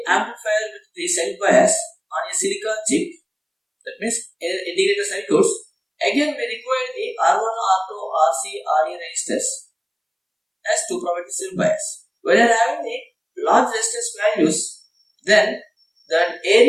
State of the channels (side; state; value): both; identical; correlation 1.00